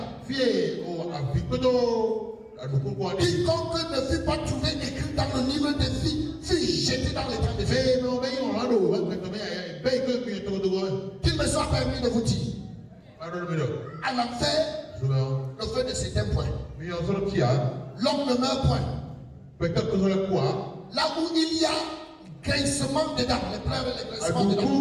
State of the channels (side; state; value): both; identical; correlation 1.00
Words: Quiconque ne fut pas trouvé écrit dans le livre de vie fut jeté dans les temps de feu. Qu'il me soit permis de vous dire, à l'enfer, le feu ne s'éteint point. L'homme ne meurt point. Là où il y a grincement dedans, les pleurs et les grincements dedans.